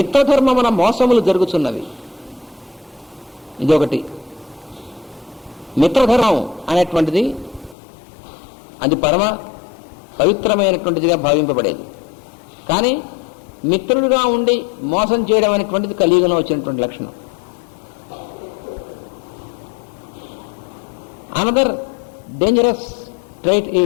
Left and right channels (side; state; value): right; drops out; at 7.8 s